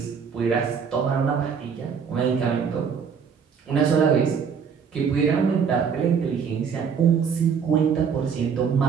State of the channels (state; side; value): quieter; left; 6.6 dB